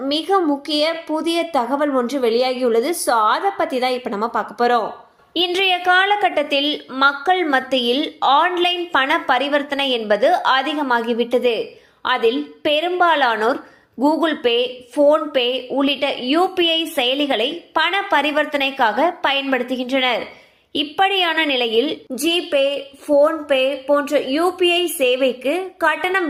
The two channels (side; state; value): both; identical; correlation 1.00